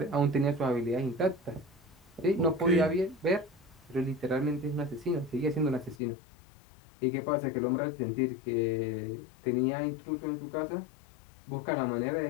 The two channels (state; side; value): drops out; right; at 6.0 s